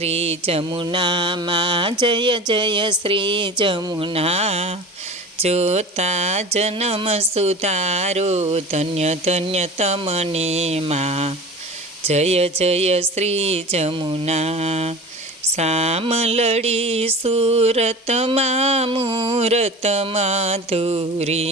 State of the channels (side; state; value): both; normal; correlation 0.36